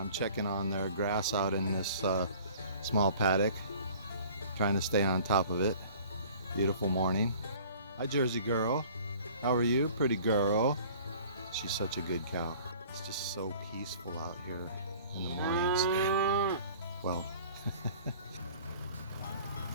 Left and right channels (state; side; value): inverted; both; correlation -0.49